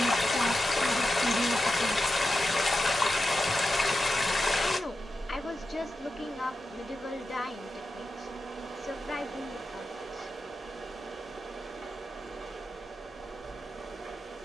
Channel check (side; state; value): both; normal; correlation 0.90